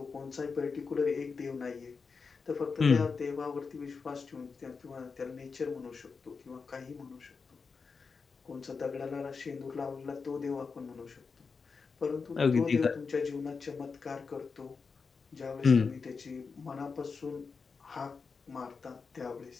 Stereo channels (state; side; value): quieter; right; 5.0 dB